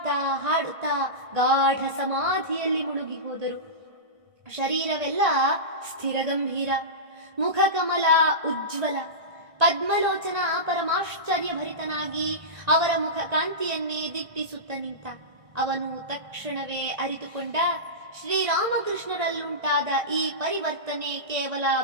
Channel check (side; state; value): left; late; 1.6 ms